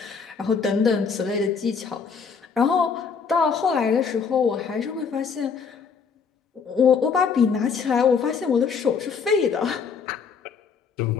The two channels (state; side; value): quieter; right; 5.9 dB